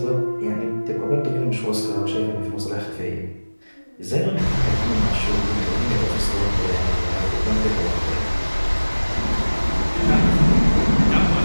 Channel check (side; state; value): both; inverted; correlation -1.00